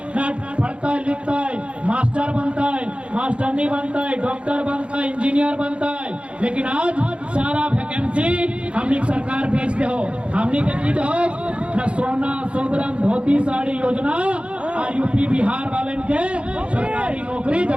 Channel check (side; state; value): left; late; 0.059 ms